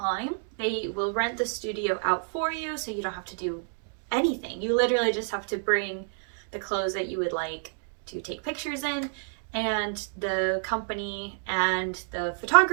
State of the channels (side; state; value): left; silent; digital silence